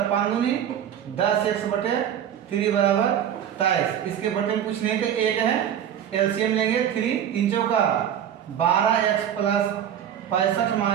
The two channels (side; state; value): left; quieter; 9.7 dB